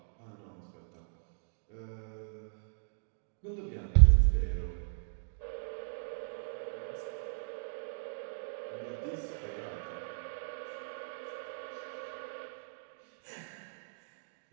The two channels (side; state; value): left; silent; digital silence